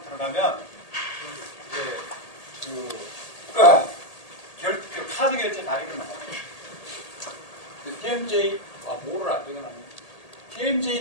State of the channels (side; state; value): right; late; 1.8 ms